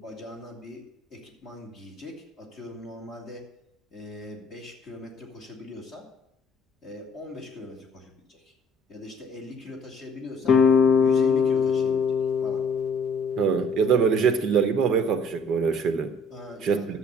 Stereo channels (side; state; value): both; normal; correlation 0.57